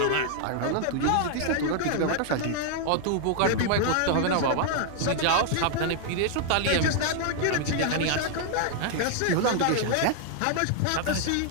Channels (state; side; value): different; both; correlation 0.00